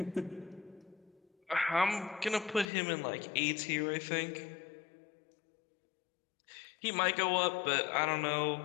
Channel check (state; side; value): drops out; right; at 2.7 s